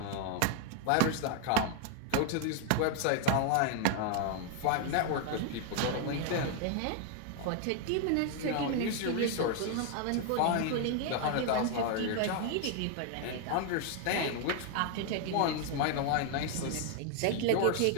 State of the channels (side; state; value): both; different; correlation 0.00